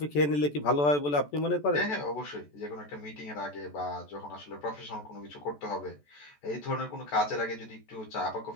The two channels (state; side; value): late; right; 14 ms